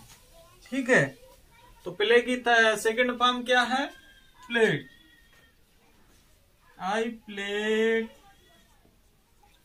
ठीक है, तो प्ले की सेकंड फॉर्म क्या है? Played. I played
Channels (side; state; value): both; identical; correlation 1.00